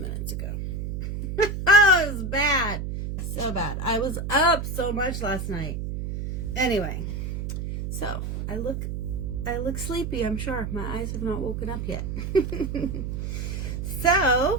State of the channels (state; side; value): noise; right; hum, 4 dB below the sound